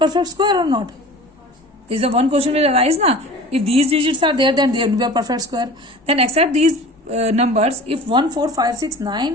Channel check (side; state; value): both; normal; correlation 0.39